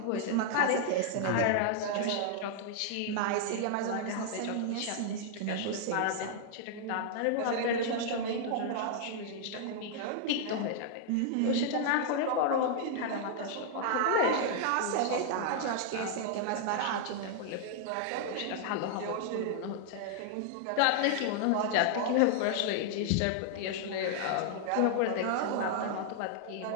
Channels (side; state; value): both; different; correlation -0.01